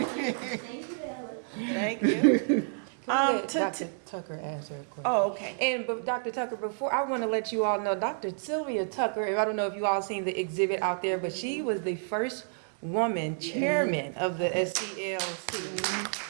Thank you. Can we let to- Dr. Tucker answer a question? Oh, okay. And but Dr. Tucker, before I want to let you all know, Dr. Sylvia Tucker, I don't know if you all seen the exhibit out there, but she was the first woman chairman of the SCLC.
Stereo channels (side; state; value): left; silent; digital silence